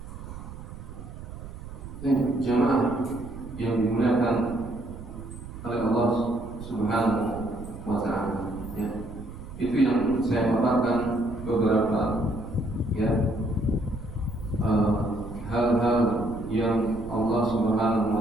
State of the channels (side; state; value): right; noise; rumble, 12 dB below the sound